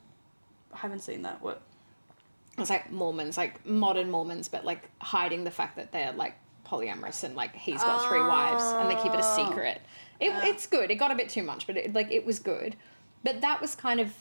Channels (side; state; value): both; inverted; correlation -1.00